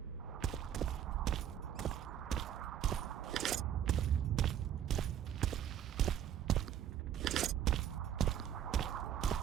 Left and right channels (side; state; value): left; quieter; 10.0 dB